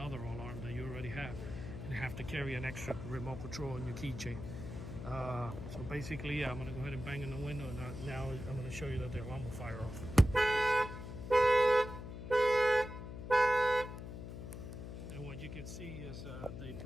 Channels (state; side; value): noise; left; hum, 9 dB below the sound